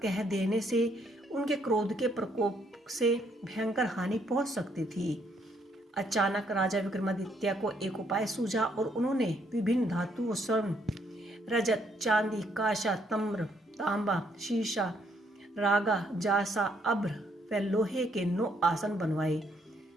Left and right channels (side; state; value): both; normal; correlation 0.70